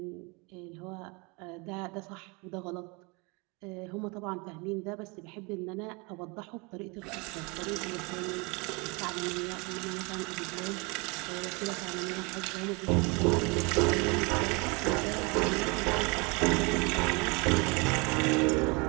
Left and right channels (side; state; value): left; quieter; 29.1 dB